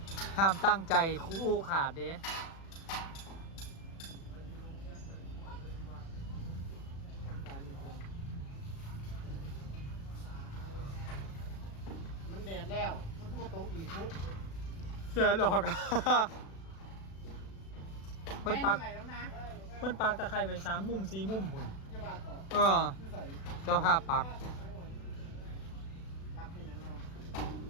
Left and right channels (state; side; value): late; right; 36 ms